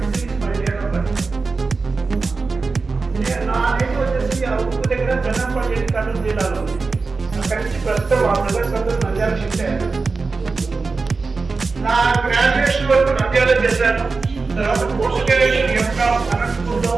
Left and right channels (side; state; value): left; quieter; 4.2 dB